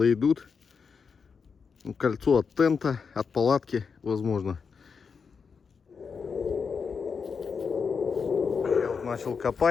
идут. Кольцо от тента, от палатки, возможно. Я вот начал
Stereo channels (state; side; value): quieter; right; 5.7 dB